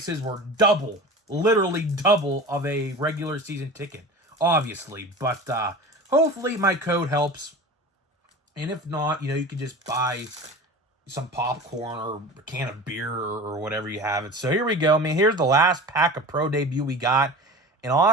were double, literally double of a regular season ticket, obviously. But hopefully my code helps. And if not, you can just buy some popcorn or a can of beer or whatever you have it. So here we go. I mean, here's the last pack of Pro Debut we got. And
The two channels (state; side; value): normal; both; correlation 0.35